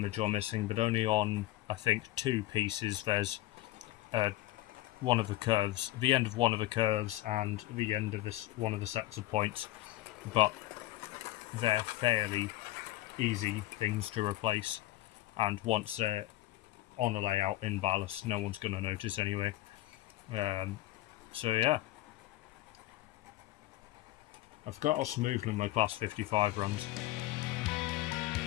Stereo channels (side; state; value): right; quieter; 16.4 dB